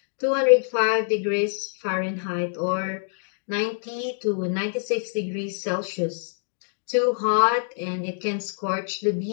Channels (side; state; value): right; silent; digital silence